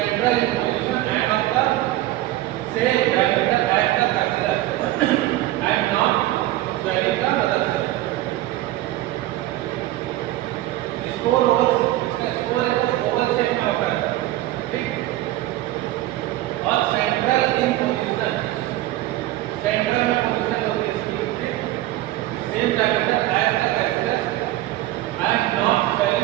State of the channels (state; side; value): quieter; left; 15.7 dB